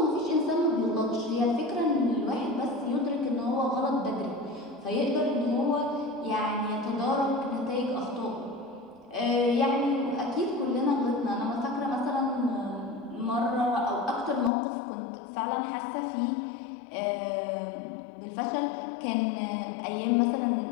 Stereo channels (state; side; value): drops out; right; at 14.5 s